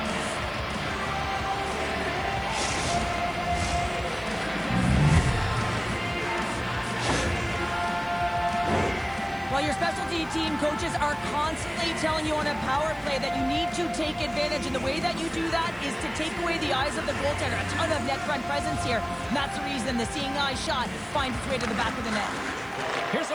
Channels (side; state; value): right; noise; hiss, 28 dB below the sound